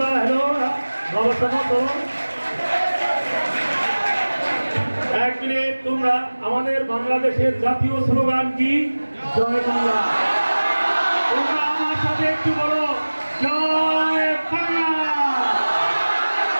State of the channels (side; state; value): both; inverted; correlation -1.00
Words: হ্যালো বাবা, এক মিনিট, তোমরা আমাদের বাংলাদেশের জাতীয় স্লোগান কি? জয় বাংলা। তোমরা আমার সাথে একটু বলো, জয় বাংলা,